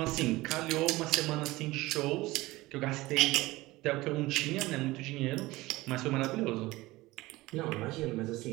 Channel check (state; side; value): quieter; left; 19.5 dB